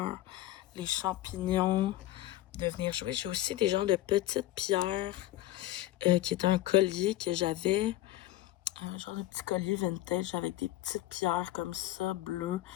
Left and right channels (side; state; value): right; quieter; 15.2 dB